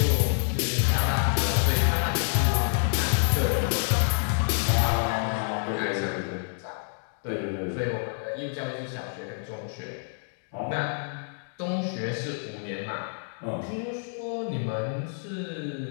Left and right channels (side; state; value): right; silent; digital silence